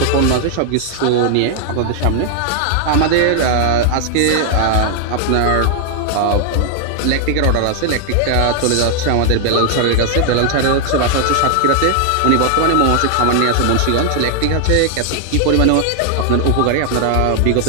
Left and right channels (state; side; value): different; both; correlation 0.00